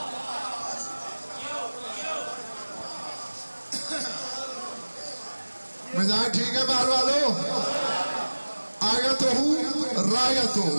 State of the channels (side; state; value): both; inverted; correlation -1.00